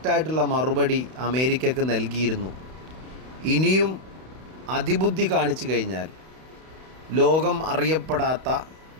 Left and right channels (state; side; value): late; left; 31 ms